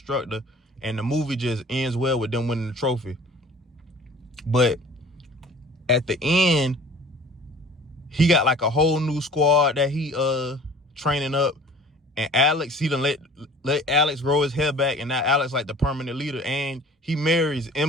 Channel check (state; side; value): normal; both; correlation 0.46